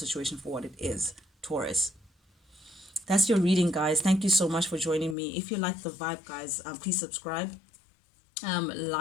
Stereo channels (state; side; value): drops out; right; at 5.2 s